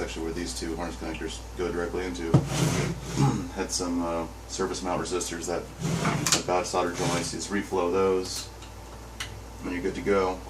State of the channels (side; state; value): both; identical; correlation 1.00